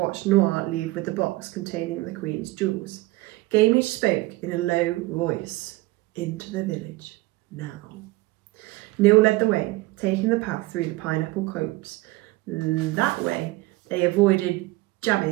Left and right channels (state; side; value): quieter; left; 20.3 dB